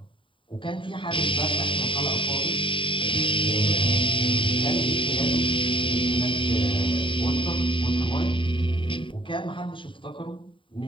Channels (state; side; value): late; right; 0.25 ms